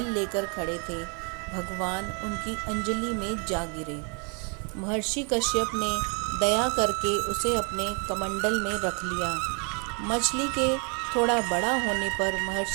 लेकर खड़े थे। भगवान उनकी अंजलि में जा गिरे। महर्षि कश्यप ने दया करके उसे अपने कमंडल में रख लिया। मछली के थोड़ा बड़ा होने पर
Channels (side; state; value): left; quieter; 36.7 dB